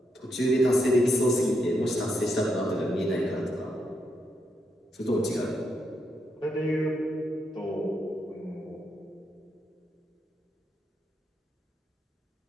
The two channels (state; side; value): normal; both; correlation 0.80